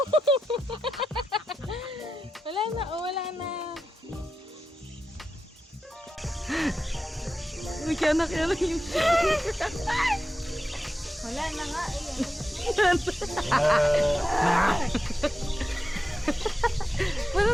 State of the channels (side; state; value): both; normal; correlation 0.90